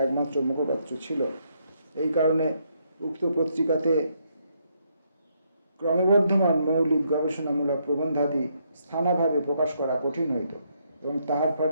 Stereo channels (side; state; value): both; inverted; correlation -0.75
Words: একমাত্র মুখপত্র ছিল। এই কারণে উক্ত পত্রিকাতে ক্রমবর্ধমান মৌলিক গবেষণামূলক প্রবন্ধাদি স্থানাভাবে প্রকাশ করা কঠিন হইত। এবং তাহার